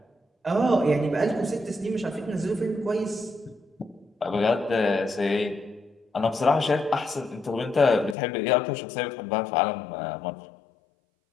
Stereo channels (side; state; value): right; drops out; at 8.2 s